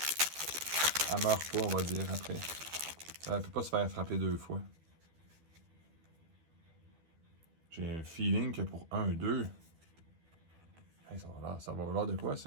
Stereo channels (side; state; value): left; late; 12 ms